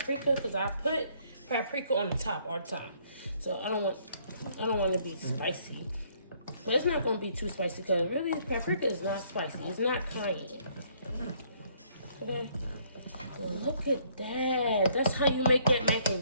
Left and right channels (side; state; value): both; inverted; correlation -0.65